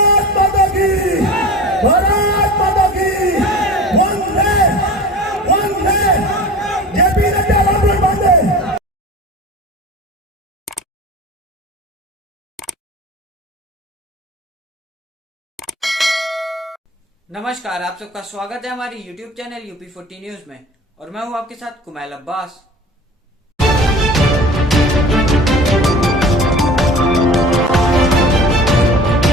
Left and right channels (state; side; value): normal; both; correlation 0.39